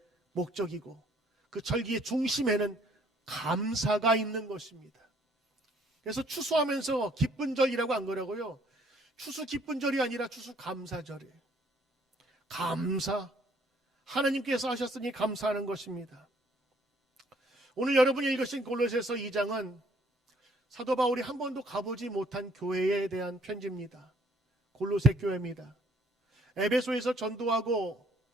목적이고, 그 절기의 중심에는 감사가 있는 것입니다. 그래서 추수하면서 기쁜 절이라고 안 그러고요, 추수 기쁜 절이 아니라 추수 감사절이에요. 감사, 하나님께서 하셨으니 감사하는 것입니다. 오늘 여러분이 읽으신 골로새서 2장은 사도 바울이 한 번도 가보지 못한 교회에 대한 편지입니다. 골로새 교회입니다. 에베소에서 전도하고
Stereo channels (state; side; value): normal; both; correlation 0.63